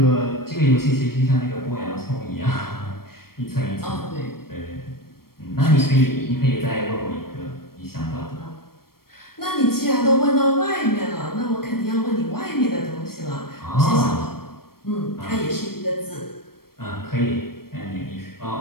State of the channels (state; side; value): late; right; 0.94 ms